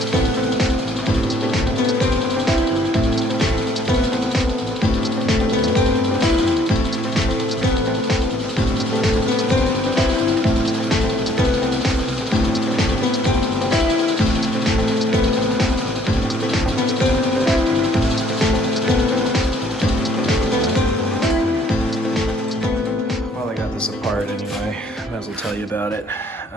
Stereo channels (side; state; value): both; normal; correlation 0.63